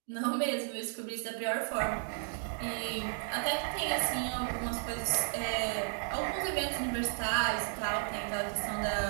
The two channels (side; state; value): left; silent; 55 dB below the other